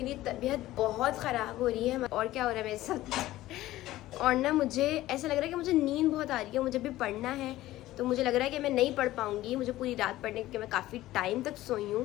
तबीयत बहुत ख़राब हो रही है, और क्या हो रहा है मेरे साथ, और ना मुझे ऐसा लग रहा है कि मुझे नींद बहुत आ रही है, मुझे भी पढ़ना है, तो मुझे लग रहा है कि मैं नहीं पढ़ पाऊंगी, मुझे पूरी रात पढ़ने, क्योंकि मैं काफ़ी टाइम तक सोई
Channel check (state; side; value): quieter; right; 15.9 dB